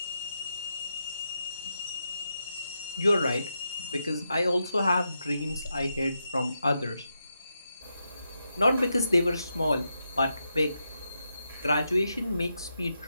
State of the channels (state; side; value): inverted; both; correlation -0.85